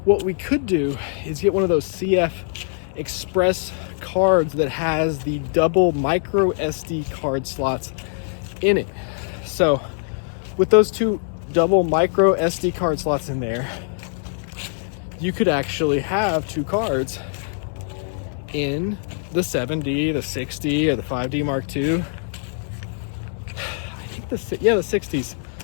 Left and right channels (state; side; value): silent; right; digital silence